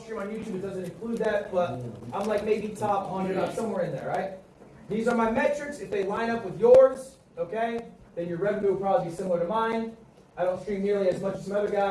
stream on YouTube. It doesn't include that, but I'm like maybe top 100. I'm somewhere in there, right? These are my metrics. If they line up with yours, okay, then your revenue will probably be similar to mine. I don't stream nearly as much as some other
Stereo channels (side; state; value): both; identical; correlation 1.00